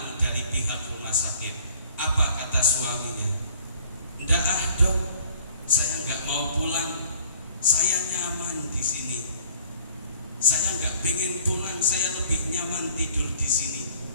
dari pihak rumah sakit. suaminya, "Ndak ah dok, saya nggak mau pulang, saya nyaman di sini. Saya nggak pengen pulang, saya lebih nyaman tidur di sini."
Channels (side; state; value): both; inverted; correlation -0.55